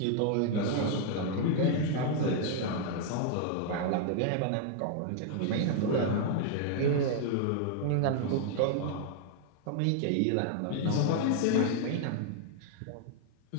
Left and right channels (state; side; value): different; both; correlation 0.00